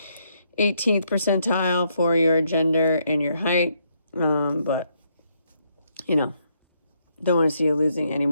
percentile for your gender and your height. But, you know, don't want to see you losing any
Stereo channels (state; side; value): inverted; both; correlation -0.75